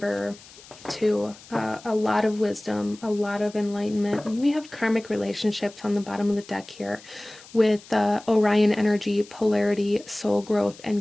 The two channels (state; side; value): noise; left; hiss, 21 dB below the sound